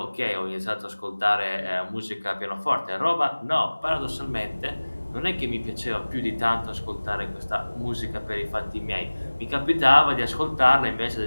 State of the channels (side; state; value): both; inverted; correlation -1.00